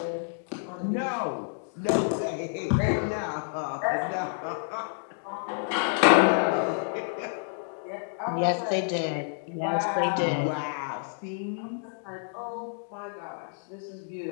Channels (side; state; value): right; silent; digital silence